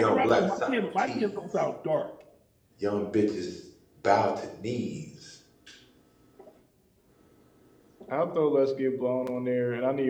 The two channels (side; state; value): both; identical; correlation 1.00